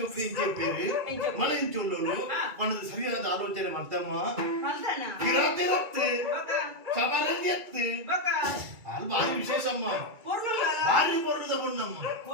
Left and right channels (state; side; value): late; left; 2.3 ms